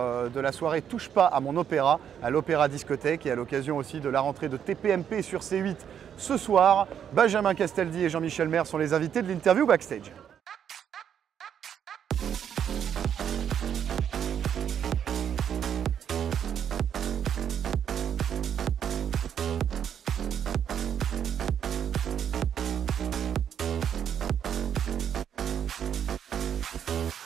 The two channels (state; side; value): quieter; left; 8.7 dB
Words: de la soirée Touche pas à mon opéra, à l'Opéra Discothèque, et à l'occasion aussi de la rentrée de TPMP sur C8 ce soir, Benjamin Castaldi et Jean-Michel Maire sont les invités de l'interview backstage.